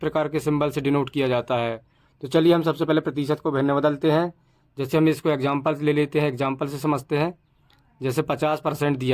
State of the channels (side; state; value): both; identical; correlation 1.00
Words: के सिंबल से डिनोट किया जाता है। तो चलिए हम सबसे पहले प्रतिशत को भिन्न बदलते हैं। जैसे हम इसको एग्जाम्पल ले लेते हैं, एग्जाम्पल से समझते हैं। जैसे 50%